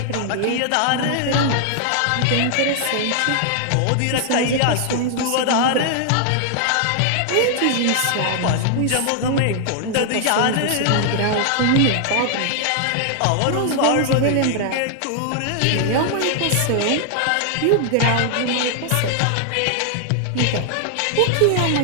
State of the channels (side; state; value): both; different; correlation 0.00